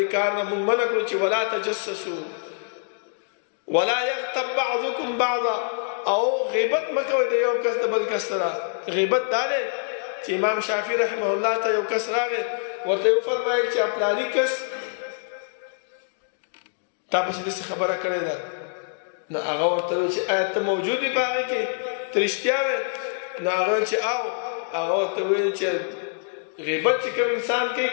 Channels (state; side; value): silent; right; digital silence